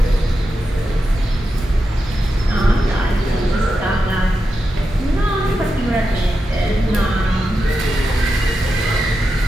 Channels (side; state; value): both; normal; correlation 0.89